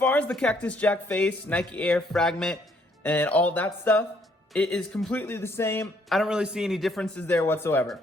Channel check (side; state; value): both; normal; correlation 0.67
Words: as the Cactus Jack face, Nike Air, Fragment, and all that stuff, it is completely the same. I don't really see any differences there whatsoever.